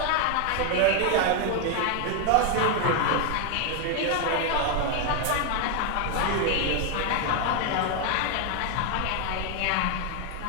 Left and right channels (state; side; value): different; both; correlation 0.01